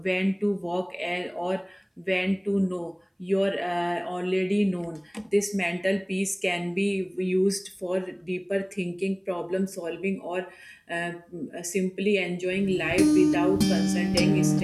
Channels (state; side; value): identical; both; correlation 1.00